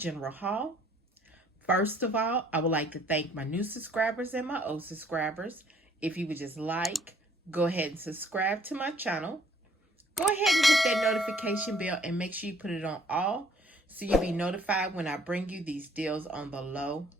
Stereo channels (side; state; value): both; normal; correlation 0.60